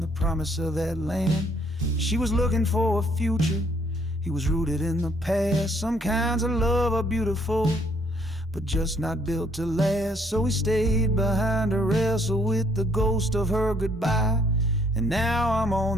promise of that land. She was looking for a future, he was rooted in the past. Some kinds of love are beautiful, but just not built to last. So he stayed behind to wrestle with the ghost of her goodbye. And now I'm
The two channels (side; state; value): both; normal; correlation 0.65